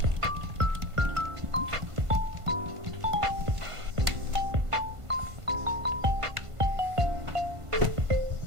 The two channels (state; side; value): late; left; 1.5 ms